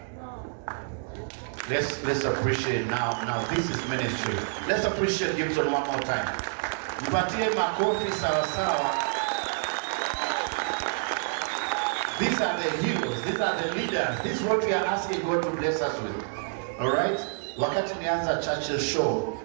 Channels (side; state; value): left; silent; digital silence